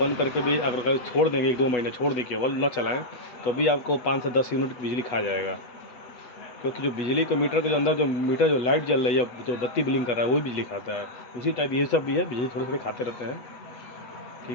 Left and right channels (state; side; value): late; right; 8.2 ms